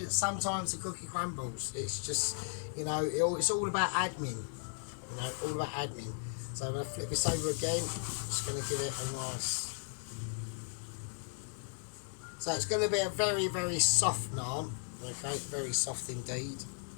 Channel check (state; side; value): silent; right; digital silence